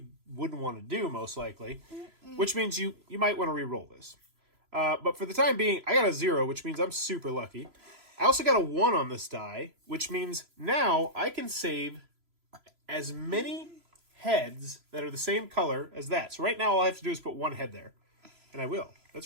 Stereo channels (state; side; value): late; left; 3.0 ms